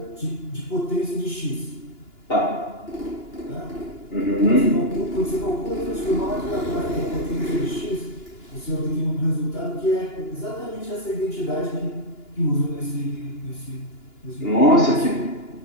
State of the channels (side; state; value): right; late; 2.9 ms